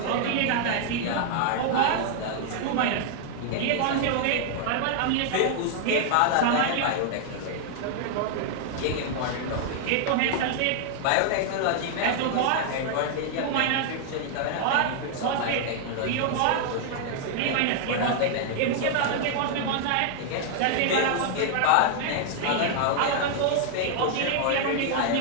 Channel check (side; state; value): both; different; correlation 0.00